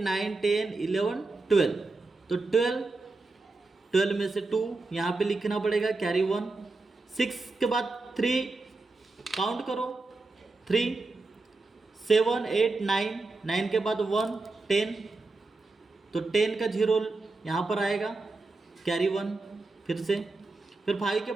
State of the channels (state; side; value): quieter; left; 3.4 dB